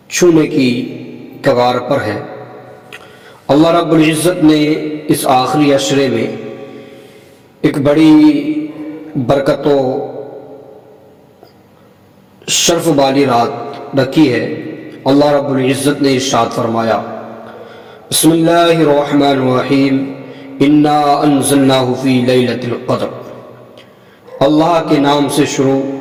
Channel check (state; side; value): identical; both; correlation 1.00